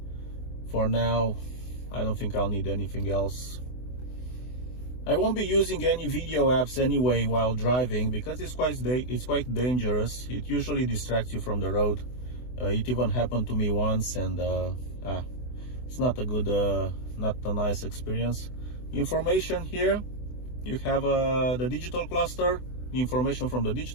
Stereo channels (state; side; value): late; right; 24 ms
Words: for now. I don't think I'll need anything else. I won't be using any video apps anyway while driving because it's quite dangerous. It usually distracts you from the road. It even happened to me once, and it's not a good, not a nice experience. Information here, you have the digital cluster, the information from the